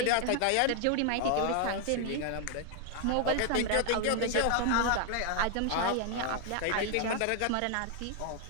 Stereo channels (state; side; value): different; both; correlation 0.00